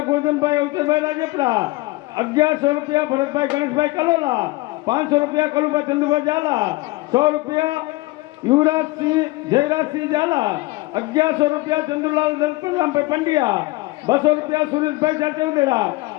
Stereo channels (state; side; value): quieter; right; 21.0 dB